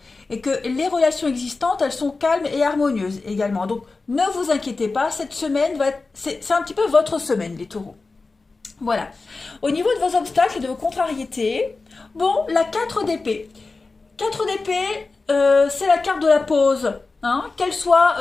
et que les relations existantes, elles sont calmes et harmonieuses également. Donc, ne vous inquiétez pas, cette semaine, c'est un petit peu votre semaine, les taureaux. Voilà. Au niveau de vos obstacles et de vos contrariétés, bon, la 4 d'épée. 4 d'épée, c'est la carte de la pause. Qu'elle soit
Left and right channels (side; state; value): right; quieter; 3.8 dB